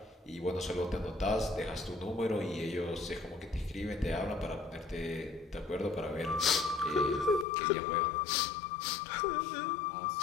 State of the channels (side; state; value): right; drops out; at 7.5 s